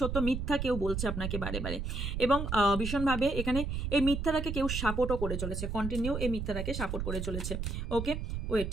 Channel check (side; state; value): right; noise; rumble, 3 dB below the sound